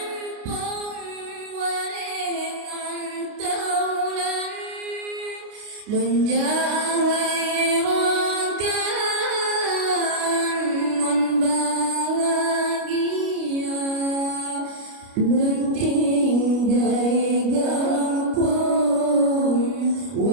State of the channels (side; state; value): left; late; 29 ms